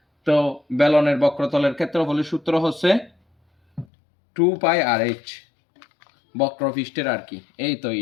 তো বেলনের বক্রতলের ক্ষেত্রফলের সূত্র হচ্ছে 2πrh, বক্রপৃষ্ঠের আর কি, এই তো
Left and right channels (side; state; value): right; drops out; at 3.9 s